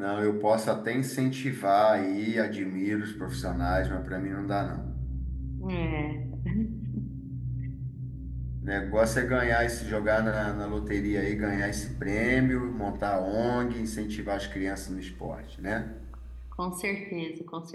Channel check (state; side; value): identical; both; correlation 1.00